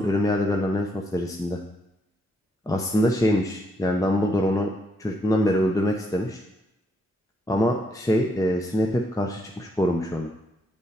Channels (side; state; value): both; normal; correlation 0.75